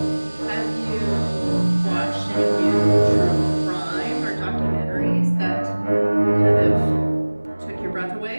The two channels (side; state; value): both; inverted; correlation -1.00